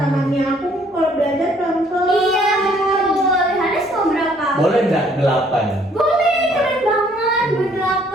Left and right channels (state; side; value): normal; both; correlation 0.62